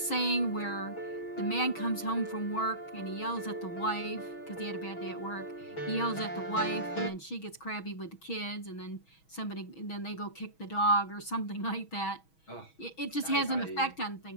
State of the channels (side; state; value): right; late; 6.2 ms